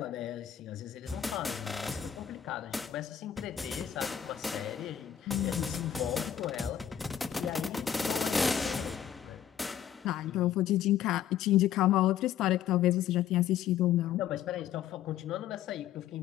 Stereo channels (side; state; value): right; quieter; 9.9 dB